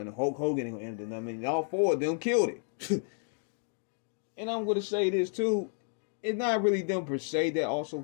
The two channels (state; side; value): silent; right; 57 dB below the other